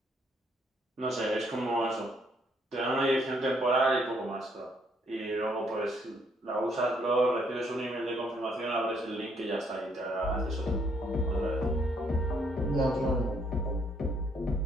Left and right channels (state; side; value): normal; both; correlation 0.69